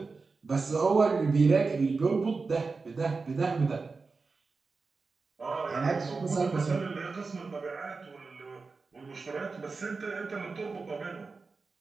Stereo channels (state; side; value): quieter; left; 4.3 dB